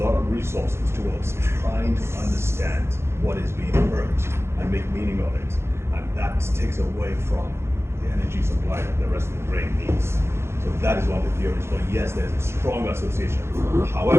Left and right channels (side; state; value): left; late; 0.12 ms